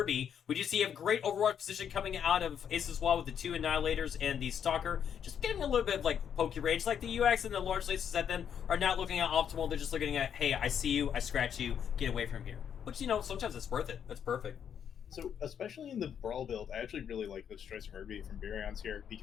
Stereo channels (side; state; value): right; quieter; 8.4 dB